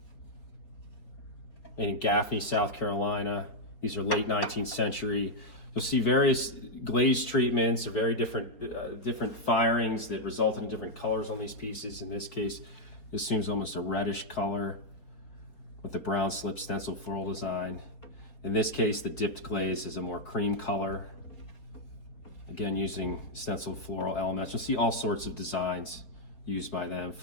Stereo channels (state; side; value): late; right; 4.4 ms